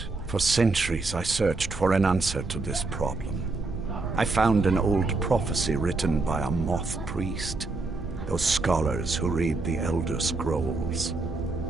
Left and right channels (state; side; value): quieter; left; 3.5 dB